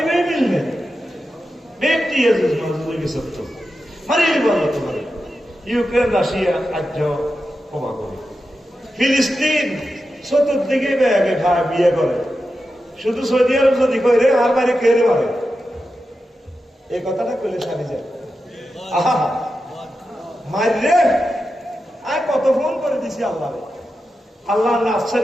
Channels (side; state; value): both; normal; correlation 0.90